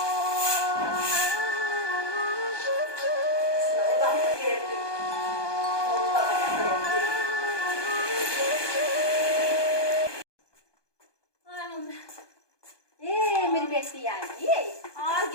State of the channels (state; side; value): late; right; 1.2 ms